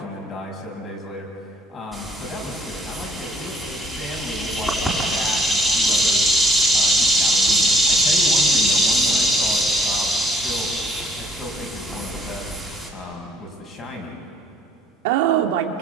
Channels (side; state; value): both; normal; correlation 0.63